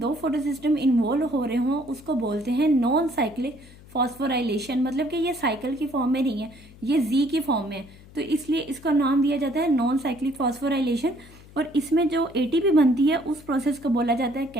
फोटो सिस्टम इन्वॉल्व हो रहे हों उसको बोलते हैं नॉन साइक्लिक फॉस्फोराइलेशन, मतलब कि ये साइकिल की फॉर्म में नहीं है, ये Z की फॉर्म में है, तो इसलिए इसका नाम दिया जाता है नॉन साइक्लिक फॉस्फोराइलेशन। और इसमें जो ATP बनती है उस प्रोसेस को बोला जाता है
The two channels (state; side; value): noise; left; hum, 22 dB below the sound